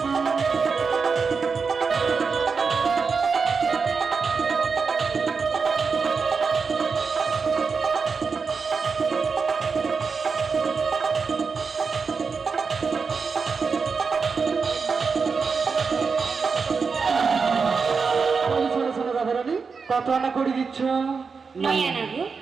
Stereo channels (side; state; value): left; quieter; 5.2 dB